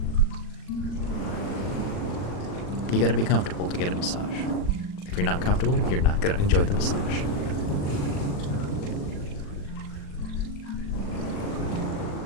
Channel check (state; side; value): late; right; 39 ms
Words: You got to be comfortable to get a massage. If you're not comfortable, you're not going to enjoy the massage.